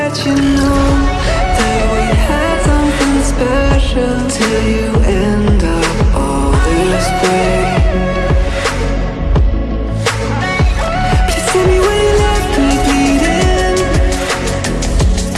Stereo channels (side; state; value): both; identical; correlation 1.00